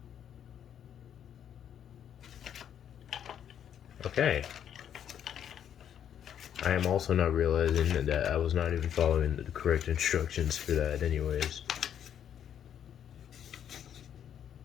Okay. I am also not realizing that I was not even following the correct instructions for that anyways.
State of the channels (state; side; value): quieter; right; 9.3 dB